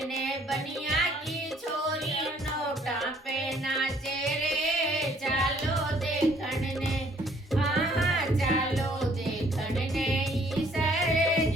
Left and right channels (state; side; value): normal; both; correlation 0.61